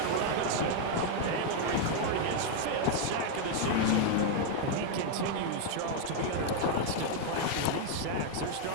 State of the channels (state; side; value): different; both; correlation 0.00